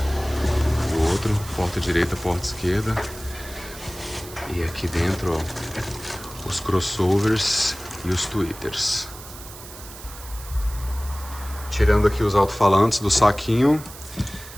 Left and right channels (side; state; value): right; noise; hiss, 15 dB below the sound